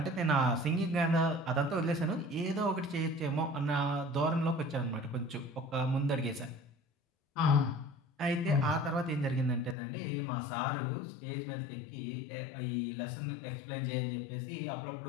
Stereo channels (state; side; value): drops out; right; at 9.8 s